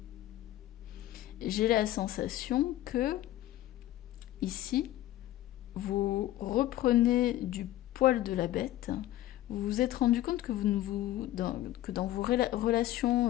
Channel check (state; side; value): quieter; right; 14.5 dB